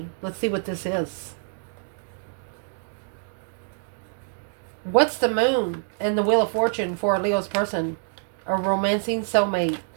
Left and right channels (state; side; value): silent; left; digital silence